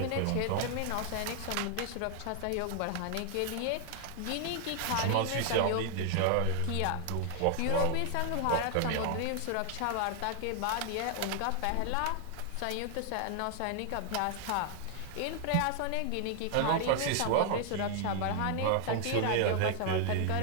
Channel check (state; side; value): different; both; correlation 0.00